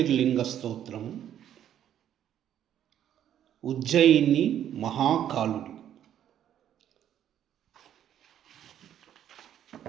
స్తోత్రం. ఉజ్జయిని మహాకాలుడు.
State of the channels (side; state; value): left; quieter; 10.5 dB